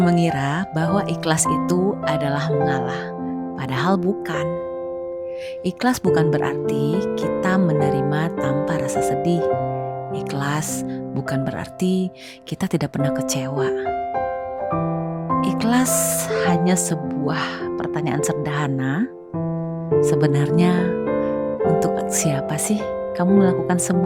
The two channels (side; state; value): both; identical; correlation 1.00